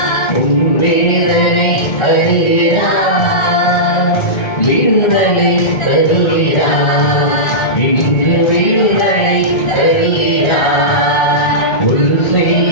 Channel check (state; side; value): late; right; 1.4 ms